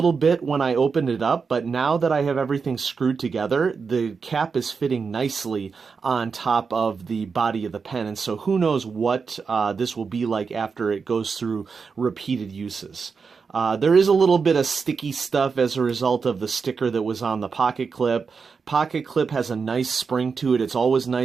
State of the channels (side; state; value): left; quieter; 5.3 dB